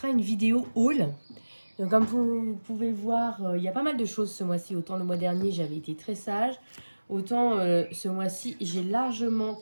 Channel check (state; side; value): inverted; both; correlation -1.00